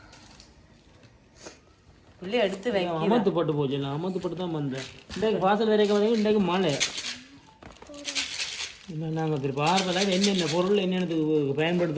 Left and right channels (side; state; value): both; identical; correlation 1.00